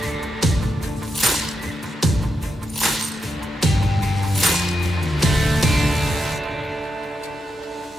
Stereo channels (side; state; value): both; normal; correlation 0.85